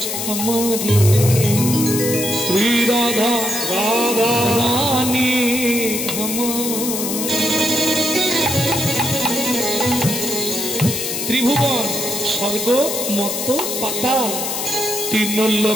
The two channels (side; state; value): left; noise; hiss, 3 dB below the sound